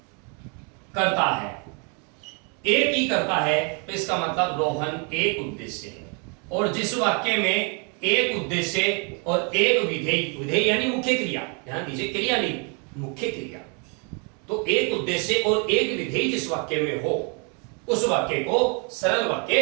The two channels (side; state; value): left; quieter; 36.2 dB